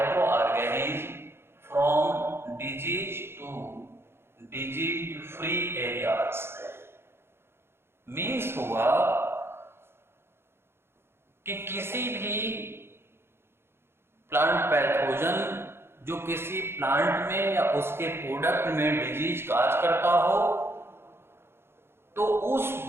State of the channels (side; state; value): left; late; 0.12 ms